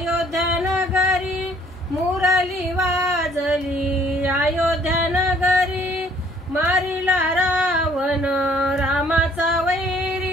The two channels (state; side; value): normal; both; correlation 0.60